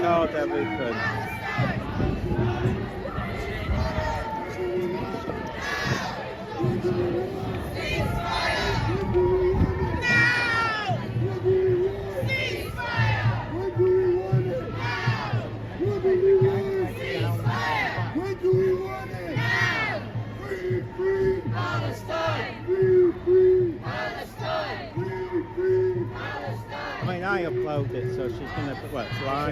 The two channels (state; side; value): identical; both; correlation 1.00